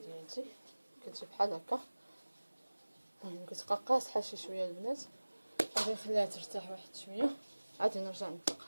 ديالتي كتجي بحال هكا. المهم كتبقى قاصحه شي شويه البنات، غادي نخليها ترتاح واحد شويه عاد نرجع نطلقها.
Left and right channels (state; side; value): inverted; both; correlation -1.00